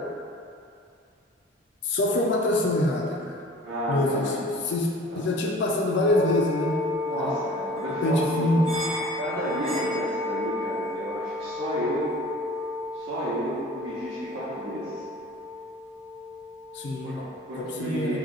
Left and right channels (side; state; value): both; normal; correlation 0.45